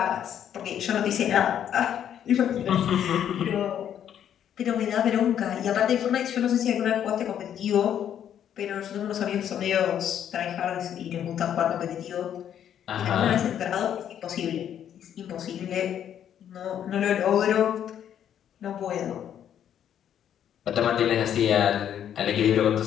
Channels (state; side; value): quieter; right; 9.7 dB